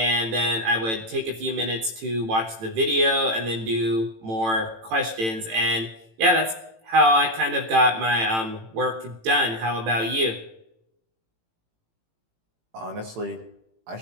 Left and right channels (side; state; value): left; late; 18 ms